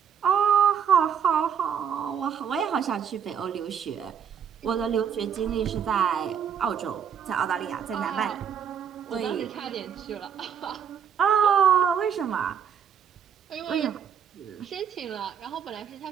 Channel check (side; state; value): left; quieter; 7.9 dB